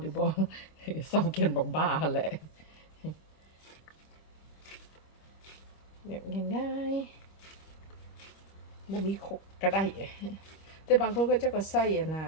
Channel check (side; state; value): right; late; 25 ms